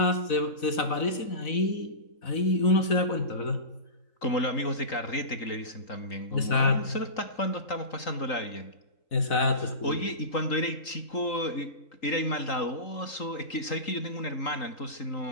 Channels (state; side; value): late; right; 4.0 ms